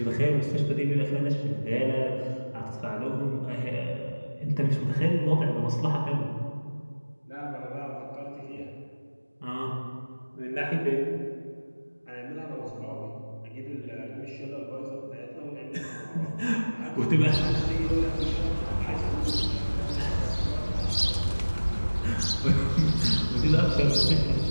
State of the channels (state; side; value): inverted; both; correlation -1.00